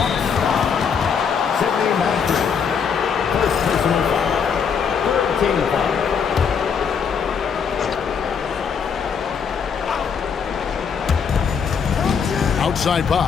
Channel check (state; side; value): quieter; right; 6.6 dB